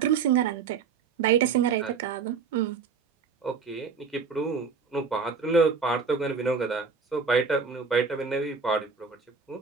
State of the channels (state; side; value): quieter; left; 5.5 dB